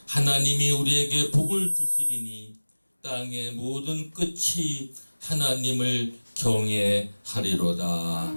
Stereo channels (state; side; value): inverted; both; correlation -1.00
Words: 하나님이 우리에게 복을 주시리니 땅의 모든 끝이 하나님을 경외하리로다.